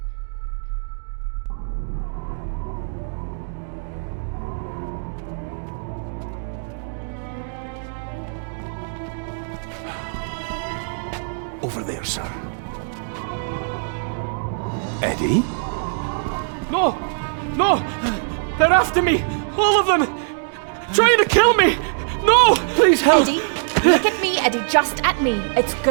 Over there, sir. Eddie? No! No! They're after me! All of them! Trying to kill me! No! Please help! Eddie, look at me, Eddie, just at me. It's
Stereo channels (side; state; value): left; silent; digital silence